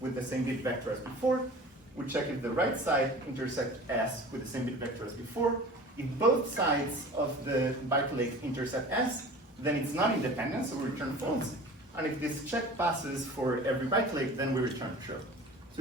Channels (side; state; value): both; normal; correlation 0.41